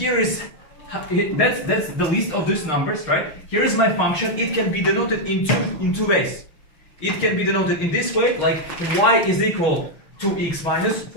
is that's the list of these numbers, right? Here is my function. It can be denoted in two ways. It can be denoted in this way, like y is equal to x minus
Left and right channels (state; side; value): late; right; 6.4 ms